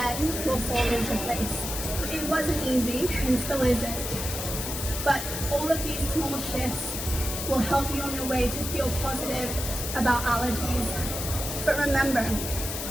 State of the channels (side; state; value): left; noise; hiss, 5 dB below the sound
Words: will fall into place. It wasn't easy and still isn't, but all of these small shifts will help you on your way to feel positive about allergies. But remember,